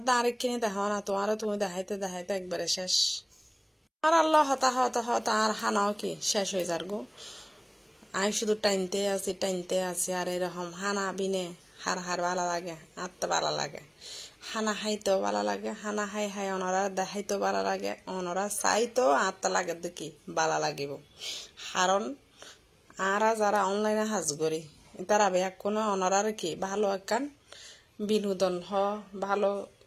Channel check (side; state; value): both; identical; correlation 1.00